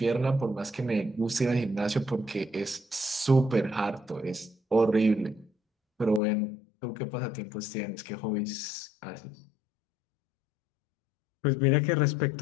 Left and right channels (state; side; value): drops out; right; at 6.2 s